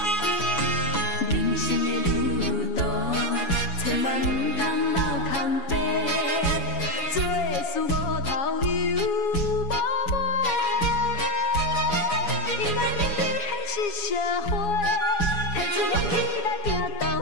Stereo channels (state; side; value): late; right; 7.2 ms